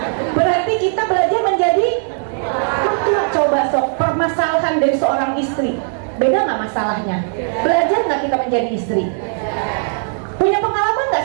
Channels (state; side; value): silent; left; 66 dB below the other